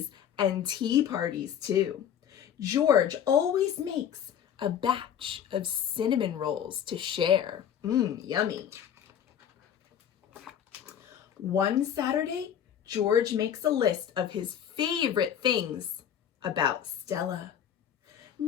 and tea parties too. George always makes a batch of cinnamon rolls to share. Yummy. One Saturday, George makes a list of his favorite things about Stella.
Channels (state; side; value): quieter; right; 9.2 dB